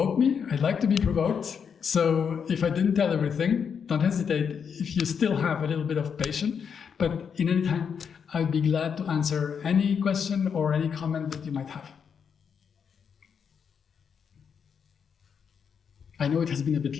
me. I'd like to be provoked. So if I didn't tell everything, don't hesitate if you still have a little bit of patience. But in any time, I'd be glad to answer any question or any comment that you might have. I know it has been a bit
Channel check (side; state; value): right; quieter; 6.9 dB